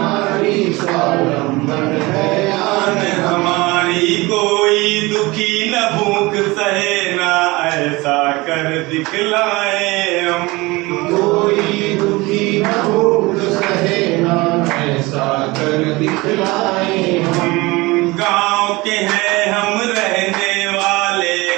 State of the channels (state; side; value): quieter; left; 22.5 dB